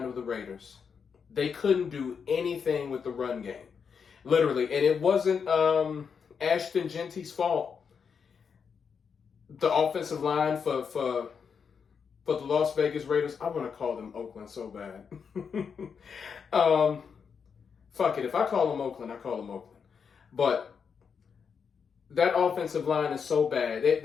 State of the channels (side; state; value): right; quieter; 6.4 dB